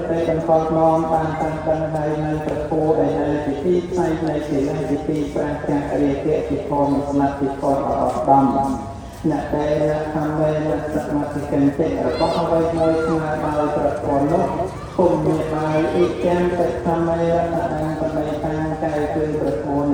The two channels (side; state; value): both; identical; correlation 1.00